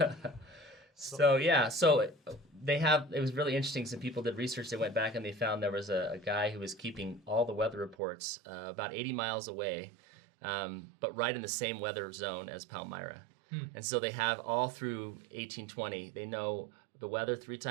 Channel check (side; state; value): left; drops out; at 8.0 s